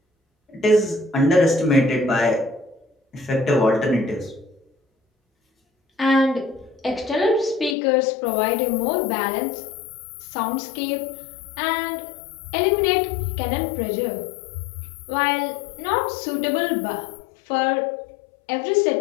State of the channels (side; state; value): right; drops out; at 7.8 s